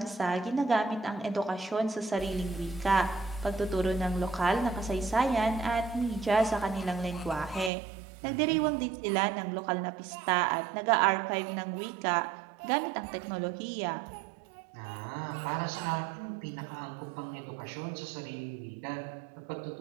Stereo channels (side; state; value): left; drops out; at 7.7 s